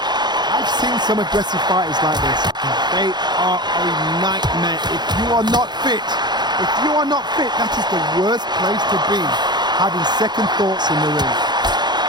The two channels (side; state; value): left; late; 0.21 ms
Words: I've seen some aggressive fighters like this. They are a nightmare. If you are not fit, that is the worst place to be, having second thoughts in the ring.